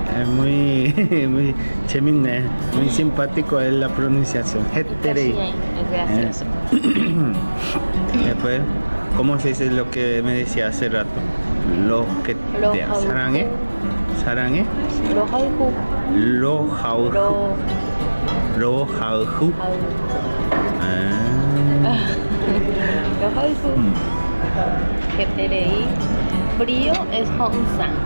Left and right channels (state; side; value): inverted; both; correlation -1.00